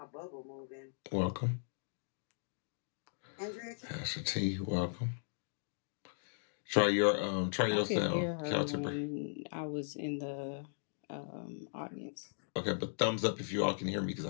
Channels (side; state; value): right; silent; digital silence